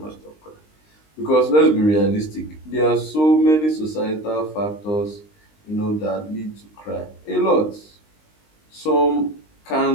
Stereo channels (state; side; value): late; right; 19 ms